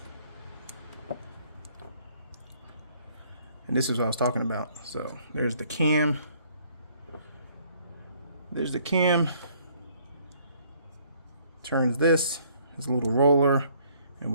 And this is what I was talking about. So there's the cam. There's the cam. Turns this. There's a little roller. And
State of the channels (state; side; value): inverted; both; correlation -0.63